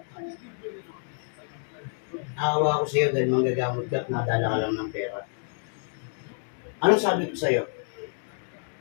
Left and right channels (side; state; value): right; silent; 59 dB below the other